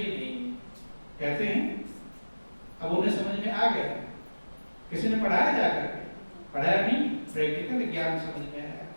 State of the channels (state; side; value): inverted; both; correlation -1.00